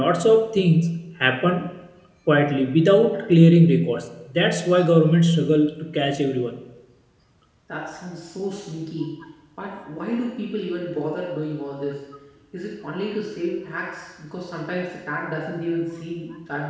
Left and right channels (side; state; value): both; identical; correlation 1.00